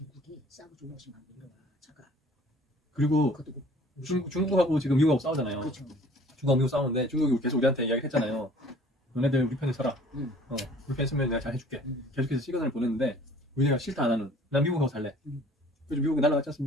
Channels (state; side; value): normal; both; correlation 0.52